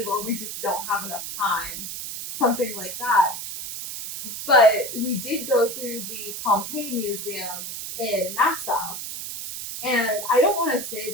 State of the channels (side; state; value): right; noise; hiss, 7 dB below the sound